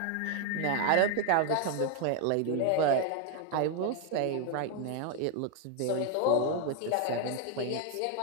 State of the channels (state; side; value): different; both; correlation 0.00